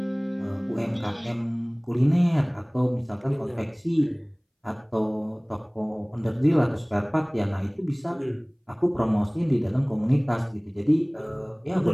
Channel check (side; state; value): both; identical; correlation 1.00